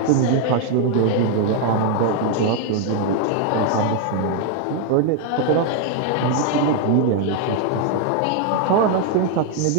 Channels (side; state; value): both; different; correlation 0.00